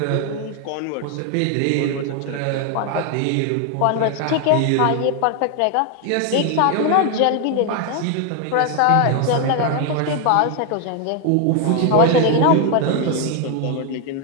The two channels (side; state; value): both; different; correlation 0.01